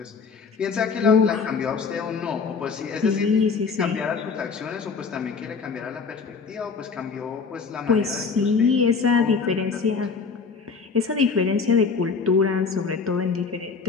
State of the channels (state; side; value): quieter; right; 5.1 dB